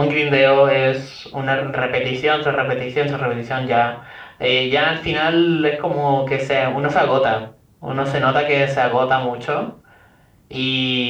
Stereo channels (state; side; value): identical; both; correlation 1.00